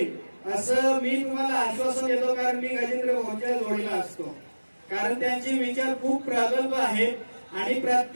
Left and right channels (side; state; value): both; inverted; correlation -1.00